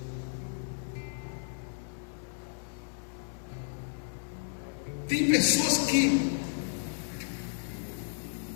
Tem pessoas que,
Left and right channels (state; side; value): silent; right; 56 dB below the other